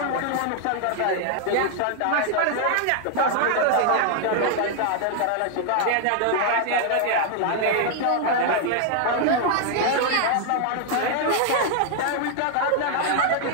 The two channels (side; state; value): both; different; correlation 0.00